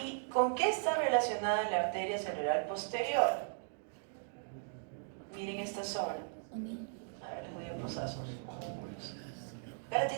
¿con qué está relacionada la arteria cerebral posterior? Miren esta zona. A ver, les voy a pasar sus músculos. ¿Ya la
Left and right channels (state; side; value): silent; left; digital silence